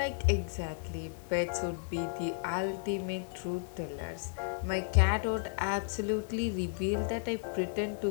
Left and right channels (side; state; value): right; silent; 55 dB below the other